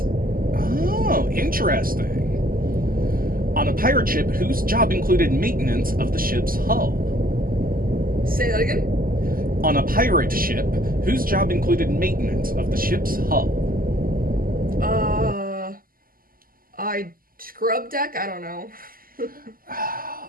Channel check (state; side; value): late; left; 0.42 ms